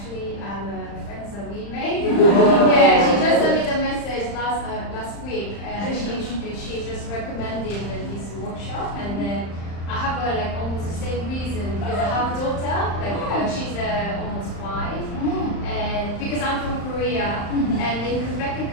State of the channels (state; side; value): late; right; 35 ms